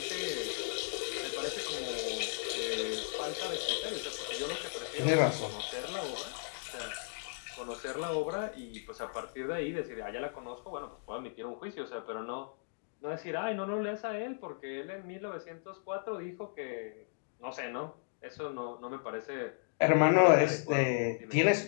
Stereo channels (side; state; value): right; silent; digital silence